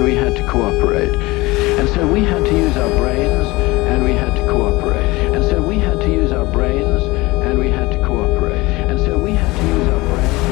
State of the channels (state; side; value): quieter; right; 21.7 dB